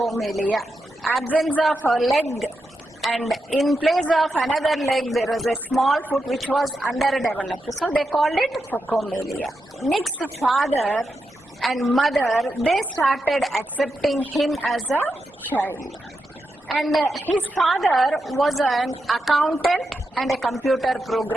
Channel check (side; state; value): both; normal; correlation 0.87